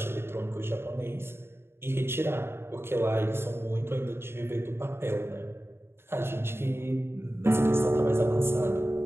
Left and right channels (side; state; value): left; late; 0.12 ms